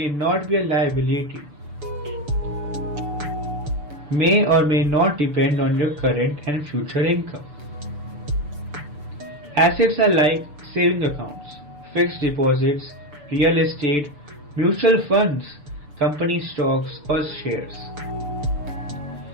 not be a liability. May or may not depend on your current and future income. Assets are like saving accounts, fixed deposits, real estate, mutual funds, company stocks or shares.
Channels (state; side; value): late; left; 6.8 ms